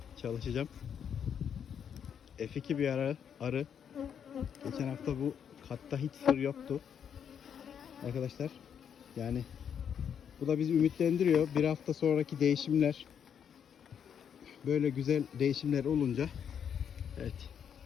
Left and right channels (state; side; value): quieter; right; 8.1 dB